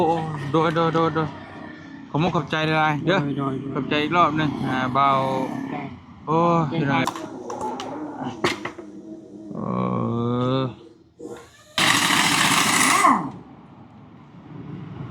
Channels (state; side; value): identical; both; correlation 1.00